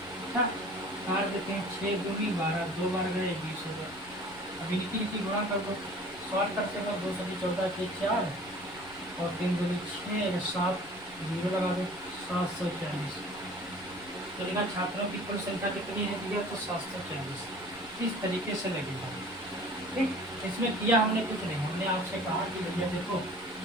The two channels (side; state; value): left; noise; rumble, 22 dB below the sound